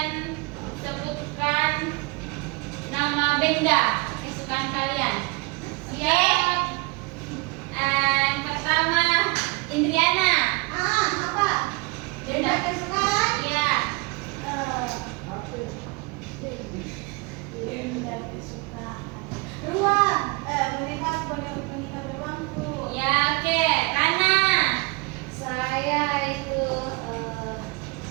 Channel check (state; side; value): quieter; left; 27.8 dB